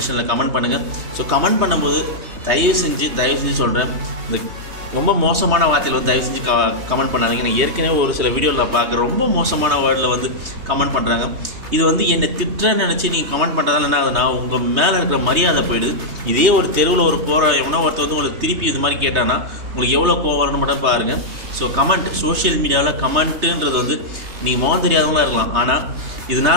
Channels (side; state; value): left; late; 3.3 ms